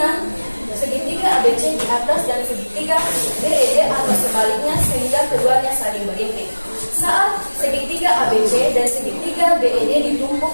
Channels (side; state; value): both; inverted; correlation -1.00